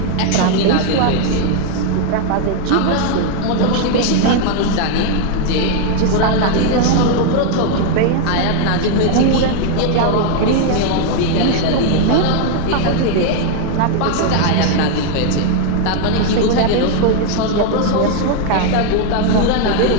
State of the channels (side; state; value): both; different; correlation 0.01